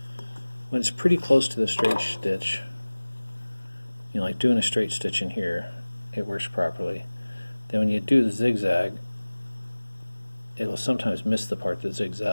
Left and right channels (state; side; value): inverted; both; correlation -1.00